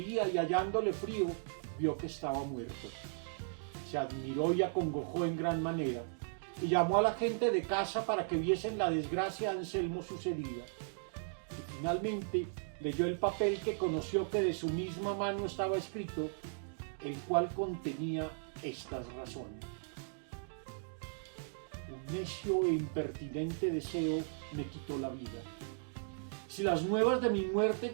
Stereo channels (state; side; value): silent; left; digital silence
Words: y hallándole frío, vio que estaba muerto. Se admiró y acongojó en gran manera, y llamó a la gente de casa para que viesen la desgracia a Anselmo sucedida. Y finalmente leyó el papel que conoció que de su misma mano estaba escrito, el cual contenía estas razones. Un necio e impertinente deseo me quitó la vida. Si las nuevas de mi muerte